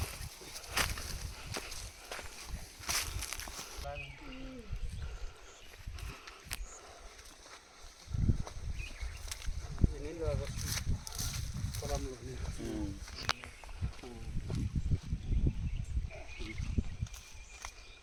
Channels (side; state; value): both; identical; correlation 1.00